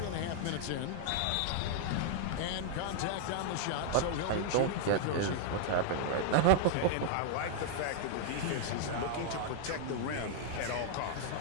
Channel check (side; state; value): both; different; correlation 0.00